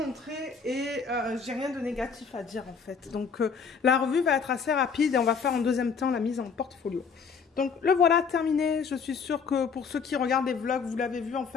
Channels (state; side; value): quieter; right; 5.8 dB